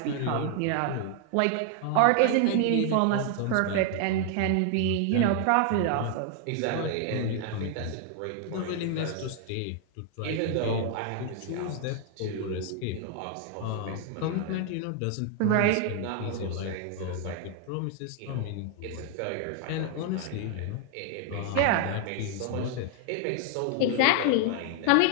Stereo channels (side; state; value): both; different; correlation 0.00